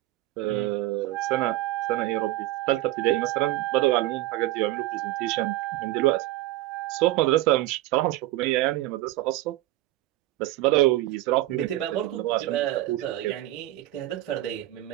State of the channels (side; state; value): left; quieter; 16.2 dB